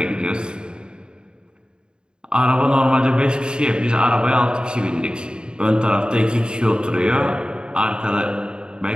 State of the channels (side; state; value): left; late; 0.050 ms